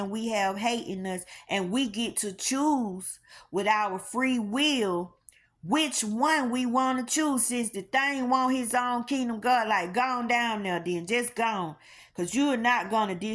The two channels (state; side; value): identical; both; correlation 1.00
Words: we have hate in us, and we get to choose with our free will which one we want to choose. Since the thing want his own kingdom, God, like, gone down there then. Just gone. Because you're not going to